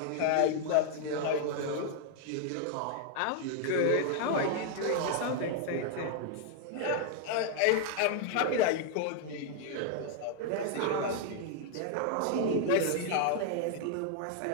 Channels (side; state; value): both; different; correlation 0.00